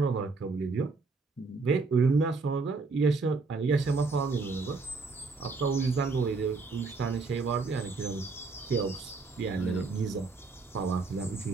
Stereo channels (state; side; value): quieter; left; 4.1 dB